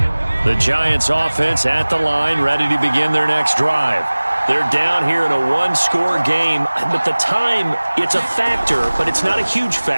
The Giants offense at the line, ready to begin their next drive. They're down here in a one-score game, but the time, it's a factor, but it's not a huge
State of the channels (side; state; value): both; inverted; correlation -1.00